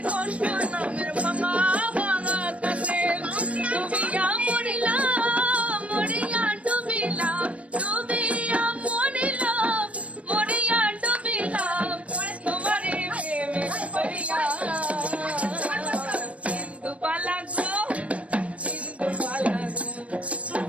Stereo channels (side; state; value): left; late; 0.064 ms